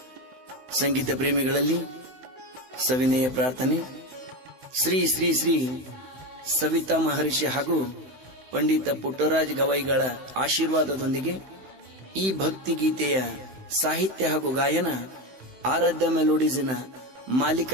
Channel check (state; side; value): late; left; 16 ms